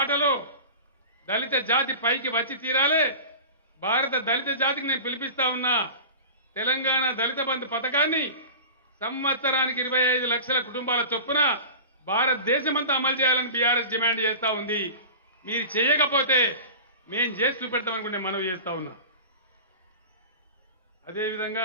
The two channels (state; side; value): inverted; both; correlation -0.34